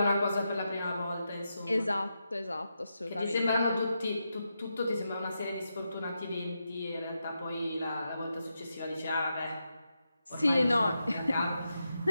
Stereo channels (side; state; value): both; inverted; correlation -0.86